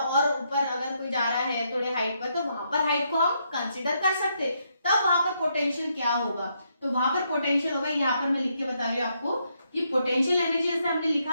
ऊपर अगर कोई जा रहा है थोड़े हाइट पर, तो वहां पर हाइट को हम कंसीडर कर सकते, तब वहां पर पोटेंशियल क्या होगा, तो वहां पर पोटेंशियल होगा, यहाँ पर मैं लिख के बता रही हूँ आपको कि पोटेंशियल एनर्जी जैसे हमने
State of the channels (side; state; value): both; inverted; correlation -0.77